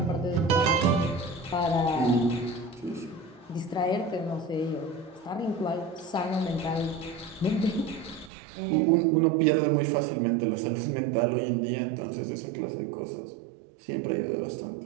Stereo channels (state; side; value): drops out; left; at 8.3 s